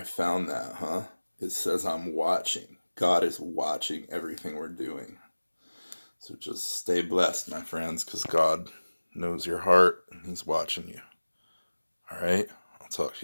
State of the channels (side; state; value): both; inverted; correlation -1.00